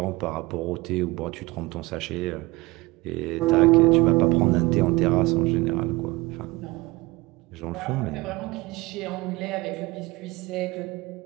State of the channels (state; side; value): quieter; left; 22.1 dB